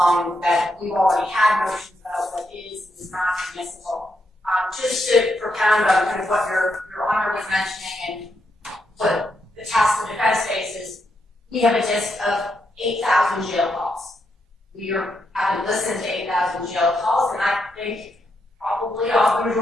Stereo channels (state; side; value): normal; both; correlation 0.81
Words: that we've already had motions about what is and is not admissible. Just to propound on kind of what Your Honor was mentioning and what the task of defense faces, we have a list of 8,000 jail calls. We haven't listened to 8,000 jail calls, and I think probably the